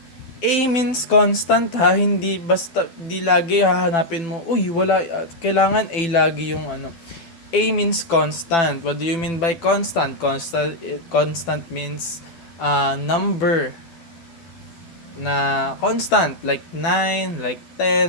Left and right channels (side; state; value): right; late; 12 ms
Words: A means constant ha, hindi basta di lagi hahanapin mo, uy wala, kailangan A lagi yung ano. A means constant. What do you mean by constant? Constant means number na constant, like 9, like